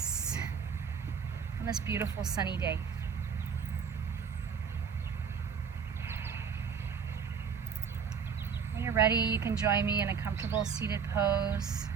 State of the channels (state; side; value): quieter; left; 6.6 dB